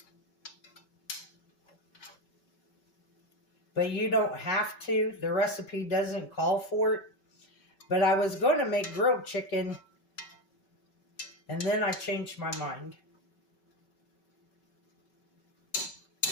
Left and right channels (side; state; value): right; late; 5.3 ms